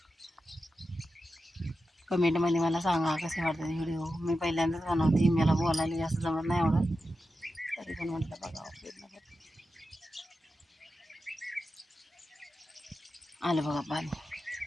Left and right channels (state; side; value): normal; both; correlation 0.91